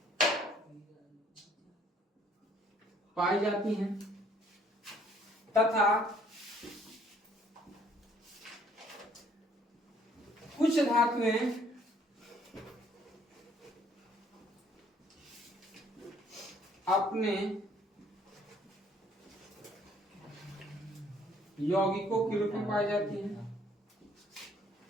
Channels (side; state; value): both; normal; correlation 0.61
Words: तथा कुछ धातुएं अपने यौगिकों के रूप में पाई जाती हैं।